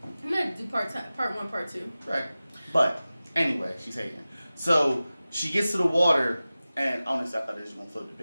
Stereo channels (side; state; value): both; inverted; correlation -0.96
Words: I'm gonna do part 1, part 2. Right. But anyway, she's hating. So she gets to the water, and honestly, I thought they was gonna float the